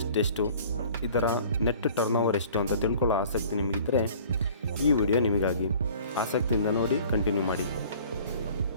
ಎಷ್ಟು, ಇದರ ನೆಟ್ ಟರ್ನ್ ಓವರ್ ಎಷ್ಟು ಅಂತ ತಿಳ್ಕೊಳ್ಳೋ ಆಸಕ್ತಿ ನಿಮಗಿದ್ದರೆ ಈ ವಿಡಿಯೋ ನಿಮಗಾಗಿ. ಆಸಕ್ತಿಯಿಂದ ನೋಡಿ, ಕಂಟಿನ್ಯೂ ಮಾಡಿ.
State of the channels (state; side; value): inverted; both; correlation -0.50